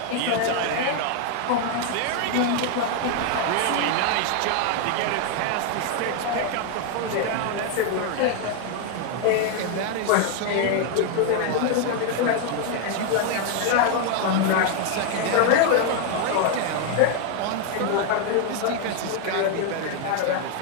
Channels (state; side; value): different; both; correlation 0.01